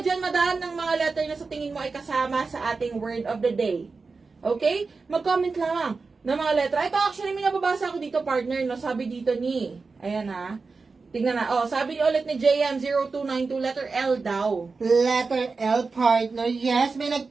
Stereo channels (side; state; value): left; quieter; 4.3 dB